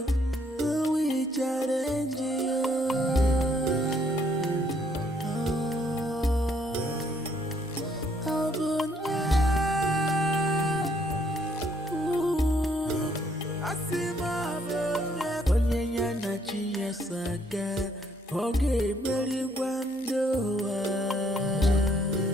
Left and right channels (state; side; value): normal; both; correlation 0.67